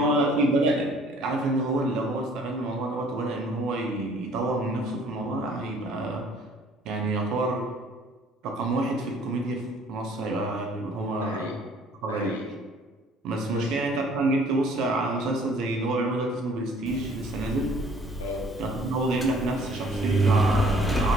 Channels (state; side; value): normal; both; correlation 0.57